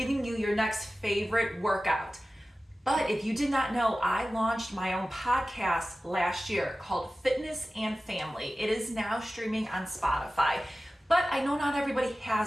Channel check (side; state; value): both; normal; correlation 0.96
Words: you your next favorite workout. But if you did not know, I launched my own podcast last year called Fitness and Family. It is now streaming on Spotify, but I know not everybody